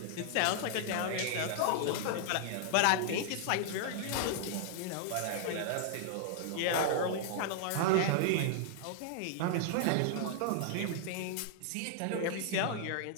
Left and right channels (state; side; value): different; both; correlation -0.01